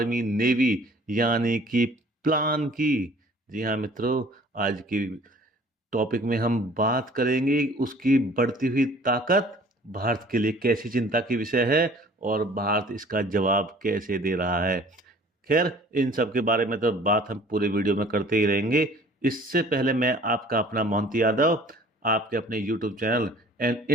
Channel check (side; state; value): both; normal; correlation 0.51